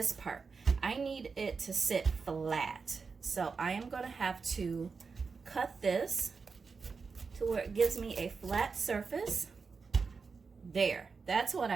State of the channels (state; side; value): quieter; left; 5.0 dB